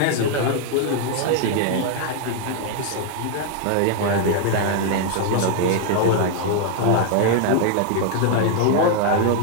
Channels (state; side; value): different; both; correlation 0.00